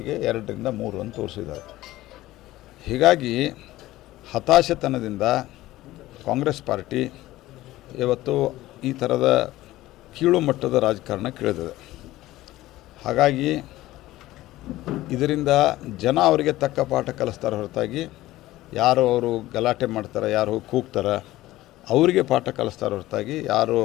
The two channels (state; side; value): quieter; right; 16.5 dB